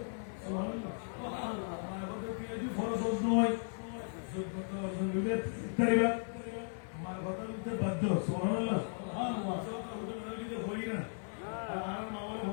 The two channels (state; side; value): silent; right; digital silence